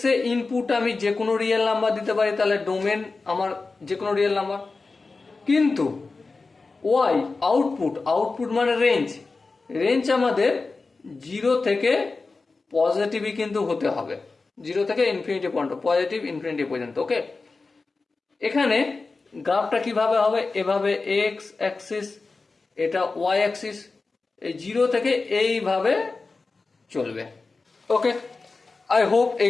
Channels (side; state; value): right; quieter; 3.9 dB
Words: এ ইনপুট আমি যে কোনো রিয়েল নাম্বার দিতে পারি, তাহলে ডোমেন আমার যে কোনো রিয়েল নাম্বার। কিন্তু ওয়াই আউটপুট, আউটপুট মানে রেঞ্জ, রেঞ্জ আমাদের 0 থেকে পজিটিভই কিন্তু হতে হবে, 0 থেকে ইনফিনিটি পর্যন্ত, পজিটিভ ইনফিনিটি পর্যন্ত। ওকে, এখানে গ্রাফটা কিভাবে হবে, এভাবে এক্স অ্যাক্সিস, এটা ওয়াই অ্যাক্সিস, এই 0 থেকে এইভাবে চলবে। ওকে, আই হোপ এই